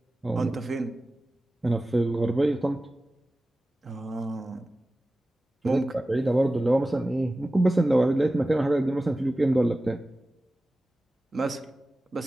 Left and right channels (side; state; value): both; normal; correlation 0.96